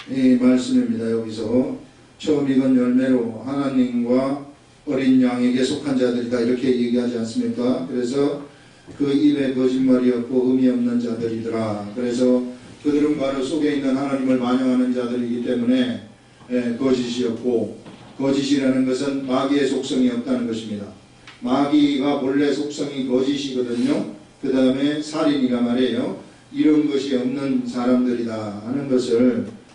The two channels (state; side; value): identical; both; correlation 1.00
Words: 말씀입니다. 여기서 처음 익은 열매로 하나님과 어린 양에게 속한 자들이다, 이렇게 얘기하지 않습니까? 그래서 그 입에 거짓말이 없고 의미 없는 자들이더라. 그래서 그들은 바로 속에 있는 하나님을 반영하는 자들이기 때문에 거짓이 없고, 거짓이라는 것은 마귀의 속성이 없다는 것입니다. 마귀가 본래 속성이 거짓이거든요. 그 다음에 살인이라 말이에요. 이런 것이 없는 사람들이다 하는 것을